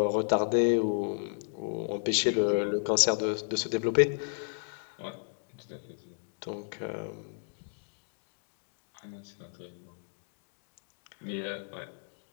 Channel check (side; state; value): right; silent; digital silence